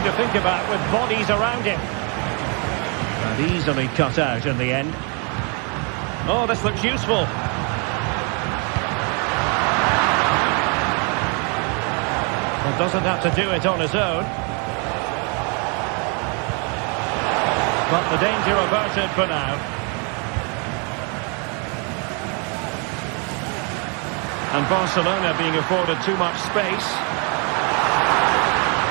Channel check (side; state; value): left; quieter; 35.1 dB